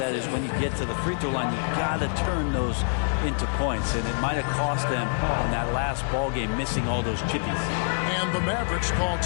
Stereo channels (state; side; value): silent; right; digital silence